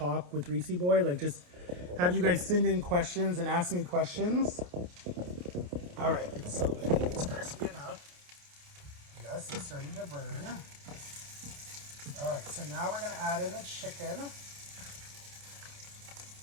with Reesie Boy, like just have you guys send in questions and ask me questions. All right, so I think it's crispy enough. Yes, it's starting to burn. All right, so now we're gonna add in the chicken.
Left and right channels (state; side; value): late; left; 28 ms